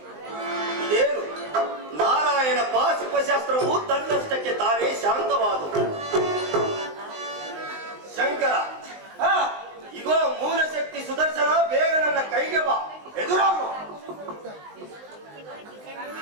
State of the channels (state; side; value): late; left; 19 ms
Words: ಇದೇನು ನಾರಾಯಣ ಪಾಶುಪಶಾಸ್ತ್ರವು ತನ್ನಷ್ಟಕ್ಕೆ ತಾನೇ ಶಾಂತವಾದವು. ಶಂಕರ, ಇಗೋ ಮೂಲ ಶಕ್ತಿ ಸುದರ್ಶನ, ಬೇಗ ನನ್ನ ಕೈಗೆ ಬಾ, ಎದುರಾಗು.